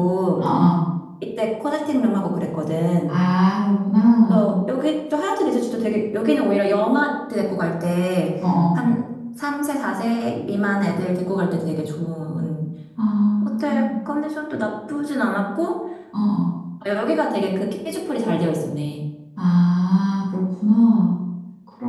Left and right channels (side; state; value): both; identical; correlation 1.00